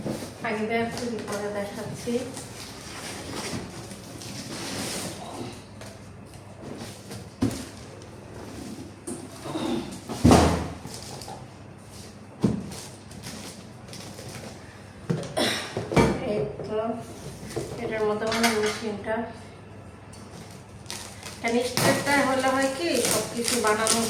আগে বের করি পরে দেখাচ্ছি। এই তো এটার মধ্যে মানে মেশিনটা স্টেপটা হলে হয় কি সব কিছু বানানো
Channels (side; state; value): both; identical; correlation 1.00